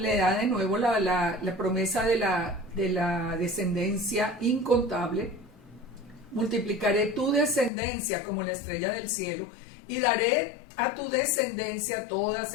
nuevo la promesa de la descendencia incontable. Multiplicaré tu descendencia como la estrella del cielo y daré a tu descendencia todas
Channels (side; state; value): right; drops out; at 7.7 s